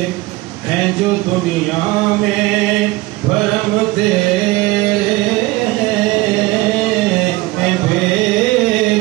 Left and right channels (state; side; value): quieter; left; 20.0 dB